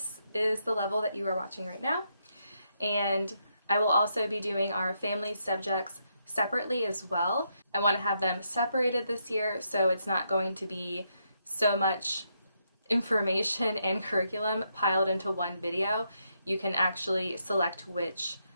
is the level that you are watching right now. And I will also be doing our family subjects separately as well. I want to have them separated this year, so it's not going to be so much information and curriculum piled into one video. You can actually select which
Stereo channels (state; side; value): inverted; both; correlation -0.79